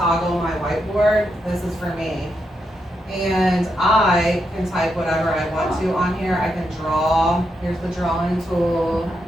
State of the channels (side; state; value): both; normal; correlation 0.82